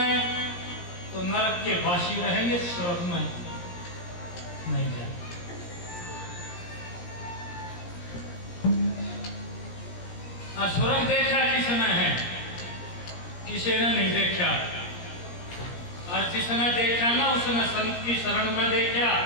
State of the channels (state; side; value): late; right; 17 ms